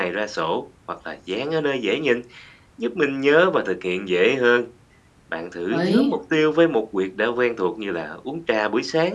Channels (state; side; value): identical; both; correlation 1.00